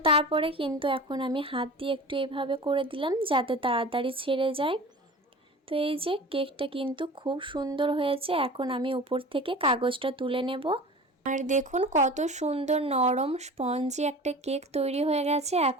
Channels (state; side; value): normal; both; correlation 0.37